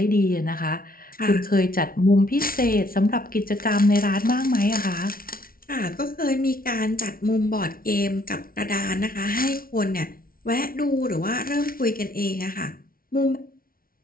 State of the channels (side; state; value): right; late; 0.43 ms